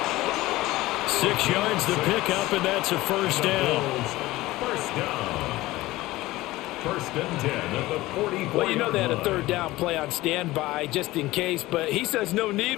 6 yards the pickup, and that's a 1st down. 1st down. 1st and 10 at the 44. Well, you know they had a 3rd down play on standby just in case, but he says no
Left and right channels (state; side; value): quieter; right; 18.2 dB